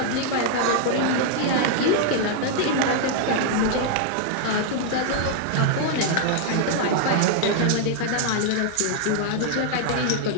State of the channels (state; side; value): different; both; correlation -0.01